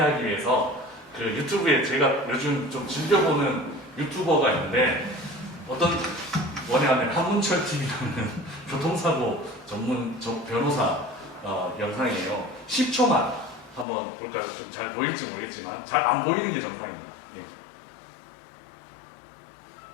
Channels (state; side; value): drops out; right; at 13.9 s